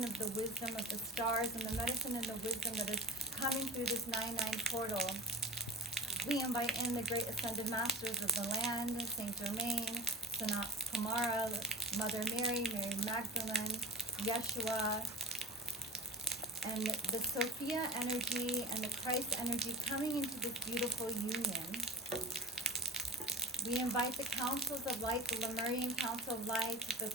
of the wisdom of the stars, and the medicine and the wisdom that is coming through this 9-9 portal. We invite in the great ascended masters of the land, Saint Germain, Sanat Kumara, Mother Mary, Mary Magdalene, Yeshua, and the Sophia energy and the Christ energy coming into this beautiful union. We invite the councils of light, the Lemurian Council of Light, the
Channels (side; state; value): both; normal; correlation 0.35